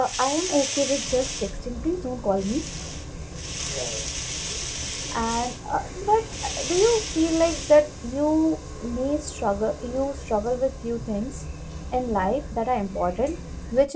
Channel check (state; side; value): identical; both; correlation 1.00